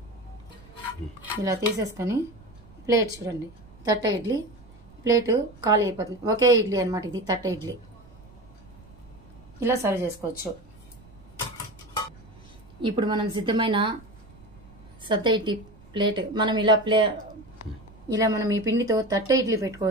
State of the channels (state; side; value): noise; right; rumble, 23 dB below the sound